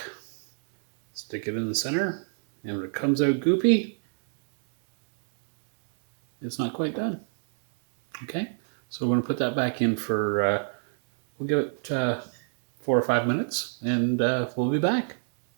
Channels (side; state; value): left; silent; digital silence